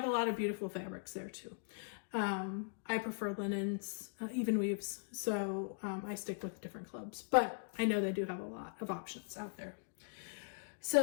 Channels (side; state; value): right; silent; digital silence